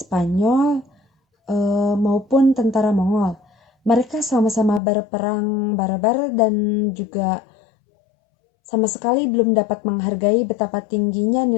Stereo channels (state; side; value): drops out; right; at 4.8 s